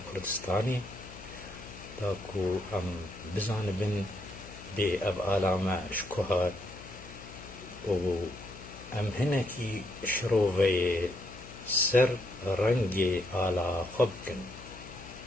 Kurdistanê da ku em bizanibin bê ev ala me ji ku hat û em hinekî şiroveyê ser rengê ala xwe bikin.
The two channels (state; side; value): noise; left; hum, 16 dB below the sound